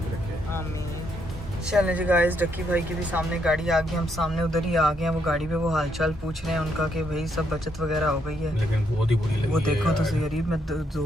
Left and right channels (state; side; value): normal; both; correlation 0.75